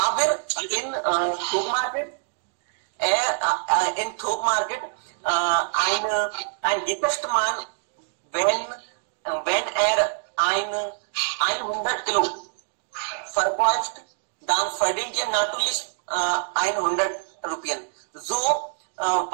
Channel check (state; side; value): silent; left; digital silence